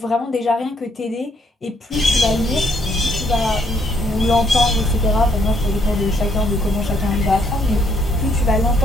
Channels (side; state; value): both; normal; correlation 0.70